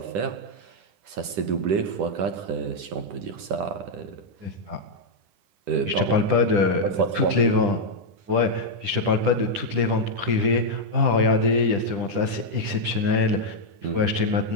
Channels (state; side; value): late; left; 10 ms